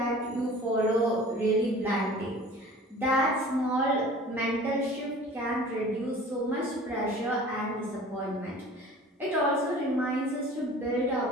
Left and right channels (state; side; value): normal; both; correlation 0.44